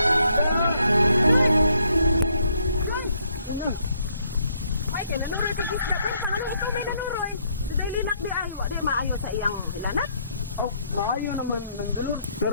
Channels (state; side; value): inverted; both; correlation -0.71